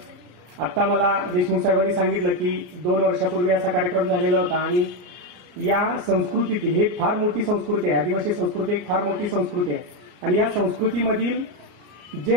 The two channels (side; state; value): left; late; 34 ms